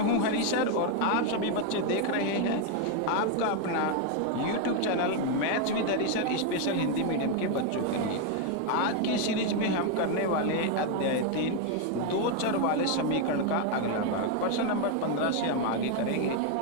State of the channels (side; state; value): both; different; correlation 0.01